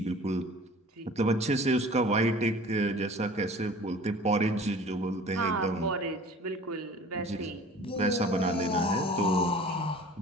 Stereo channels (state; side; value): normal; both; correlation 0.44